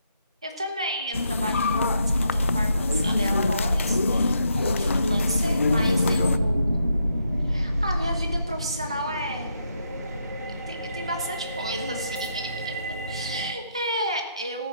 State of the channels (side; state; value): both; inverted; correlation -0.78